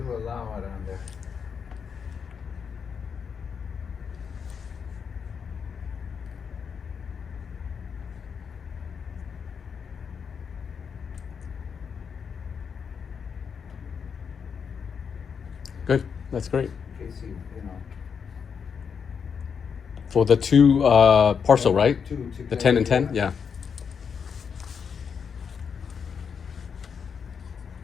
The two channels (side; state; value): right; quieter; 6.5 dB